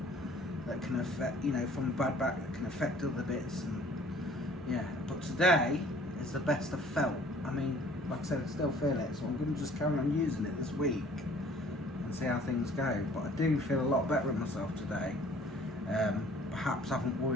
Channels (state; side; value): normal; both; correlation 0.54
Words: that can affect, you know, from a bad back that can affect other bits. And yeah, but today is the best I've felt. I mean, like I said, I still feel it, so I'm going to just carry on using it this week and see how things go. But I do feel a lot better in myself today. Perhaps I haven't